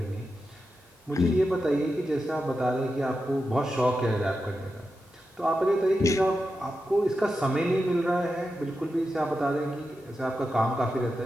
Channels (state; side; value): normal; both; correlation 0.89